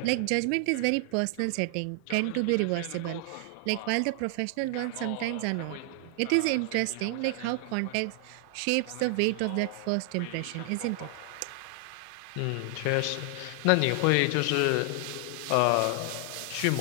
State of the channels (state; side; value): different; both; correlation 0.00